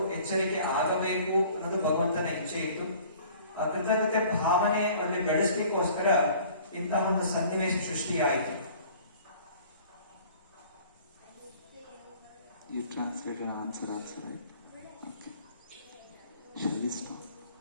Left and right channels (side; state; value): both; inverted; correlation -0.50